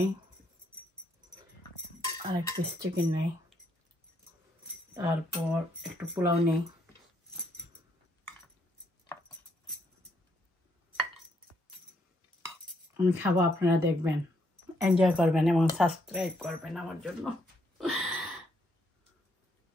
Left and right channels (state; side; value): normal; both; correlation 0.73